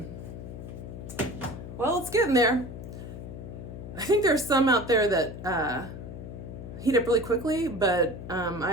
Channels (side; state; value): left; noise; hum, 10 dB below the sound